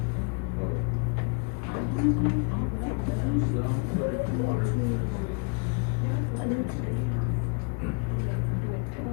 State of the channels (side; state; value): right; quieter; 37.4 dB